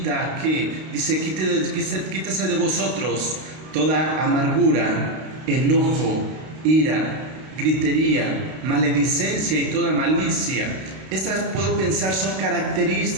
a que, dice: quítese de vosotros toda amargura, enojo, ira, gritería, maledicencia y toda malicia. Estas, puedo pensar, son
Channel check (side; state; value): left; late; 32 ms